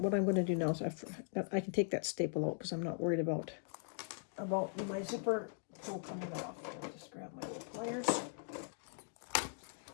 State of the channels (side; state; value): right; silent; digital silence